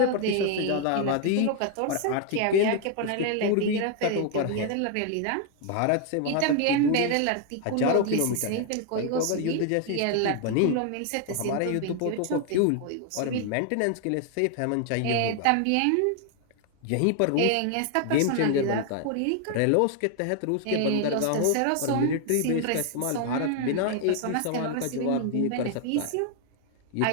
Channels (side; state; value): both; different; correlation 0.00